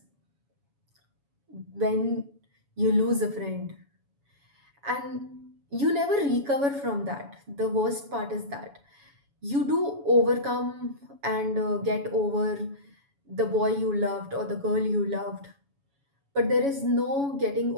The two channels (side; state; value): left; late; 7.1 ms